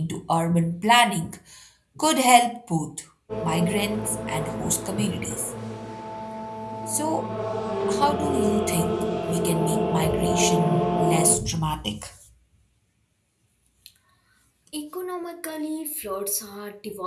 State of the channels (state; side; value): identical; both; correlation 1.00